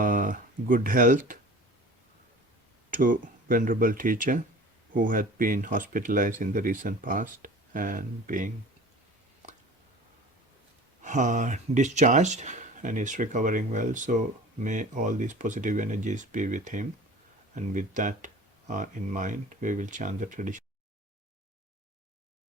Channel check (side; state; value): both; normal; correlation 0.41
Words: health to Venerable Teacher, who had been hospitalized in the recent past and being discharged and is recovering well. So may all these positive energies be with him. And with that in mind, we will chant the tradition.